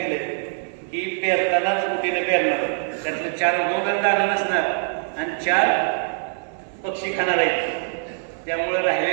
की पेरतानाच कुठेनं पेरणार, त्यातलं 4 उगवणार दाणं नसणार आणि 4 पक्षी खाणार आहेत. त्यामुळे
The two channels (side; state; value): left; silent; digital silence